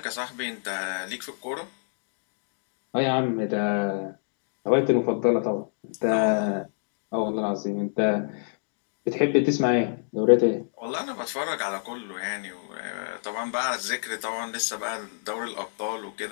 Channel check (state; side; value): silent; right; digital silence